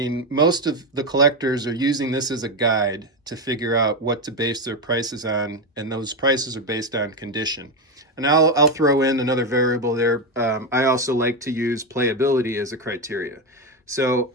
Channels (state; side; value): normal; both; correlation 0.11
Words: most of the collectors are using this as a guide to figure out what to base their prices on. And those prices are based on condition. And I'll throw in another variable there. I also like to use playability as a criteria. So